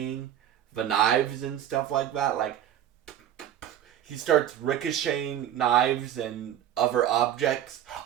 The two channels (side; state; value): left; quieter; 11.0 dB